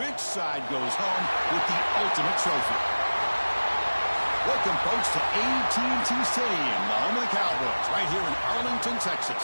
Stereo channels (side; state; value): both; inverted; correlation -1.00